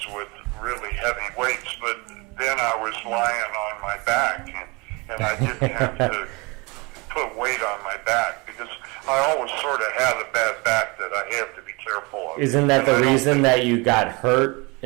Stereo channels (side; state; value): left; quieter; 27.4 dB